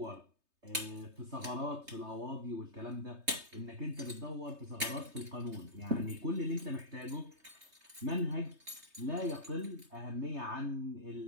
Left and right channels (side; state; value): left; late; 3.2 ms